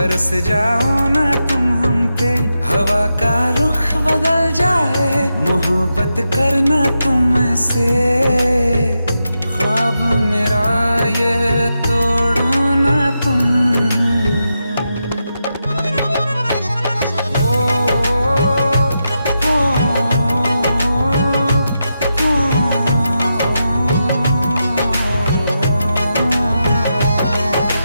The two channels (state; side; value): inverted; both; correlation -0.87